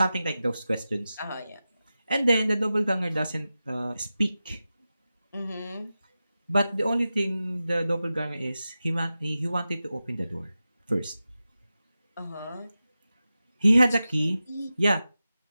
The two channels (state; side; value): inverted; both; correlation -0.93